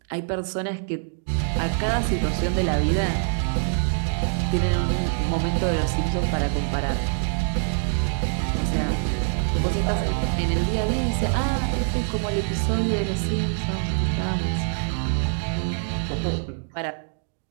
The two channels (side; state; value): left; silent; digital silence